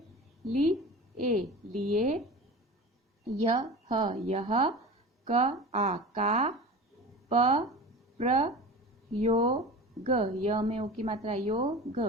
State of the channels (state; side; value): normal; both; correlation 0.34